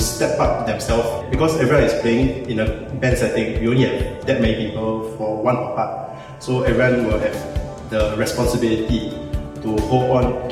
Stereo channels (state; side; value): identical; both; correlation 1.00